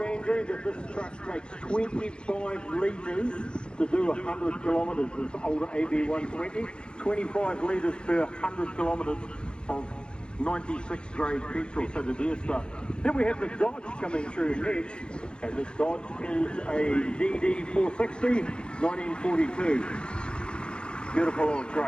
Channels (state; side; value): late; right; 0.052 ms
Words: Andrew, that this truck takes 25 litres to do 100 kilometres. This older AB120, 25 litres per 100 kilometres of 96 grade petrol, so the deer stuff. Then we have the Dodge coming through next, and this Dodge is a DD460, 1942. Beautiful old